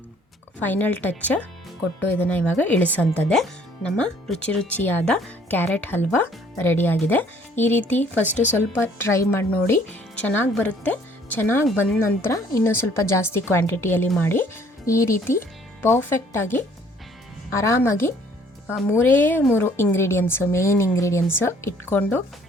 ಫೈನಲ್ ಟಚ್ ಕೊಟ್ಟು ಇದನ್ನು ಇವಾಗ ಇಳಿಸೋಂಥದ್ದೇ. ನಮ್ಮ ರುಚಿಯಾದ ಕ್ಯಾರೆಟ್ ಹಲ್ವಾ ರೆಡಿಯಾಗಿದೆ. ಈ ರೀತಿ ಫಸ್ಟು ಸ್ವಲ್ಪ ಟ್ರೈ ಮಾಡಿ ನೋಡಿ, ಚೆನ್ನಾಗಿ ಬರುತ್ತೆ. ಚೆನ್ನಾಗಿ ಬಂದ ನಂತರ ಇನ್ನೂ ಸ್ವಲ್ಪ ಜಾಸ್ತಿ ಕ್ವಾಂಟಿಟಿಯಲ್ಲಿ ಮಾಡಿ. ಈ ರೀತಿ ಪರ್ಫೆಕ್ಟಾಗಿ ಆರಾಮಾಗಿ 3 ಇಂಗ್ರೀಡಿಯೆಂಟ್ಸು, ಮೇನ್ ಇಂಗ್ರೀಡಿಯೆಂಟ್ಸು ಇಟ್ಕೊಂಡು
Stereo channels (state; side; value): normal; both; correlation 0.59